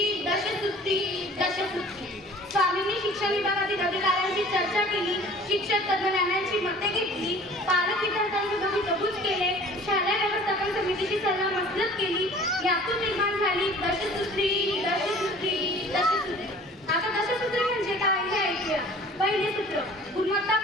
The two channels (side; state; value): both; normal; correlation 0.48